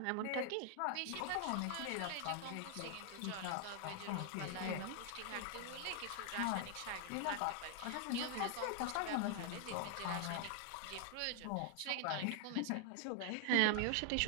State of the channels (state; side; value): different; both; correlation 0.00